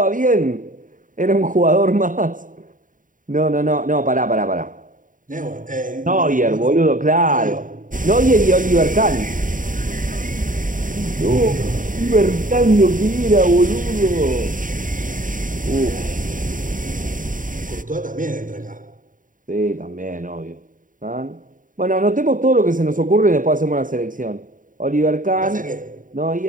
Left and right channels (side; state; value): left; late; 0.39 ms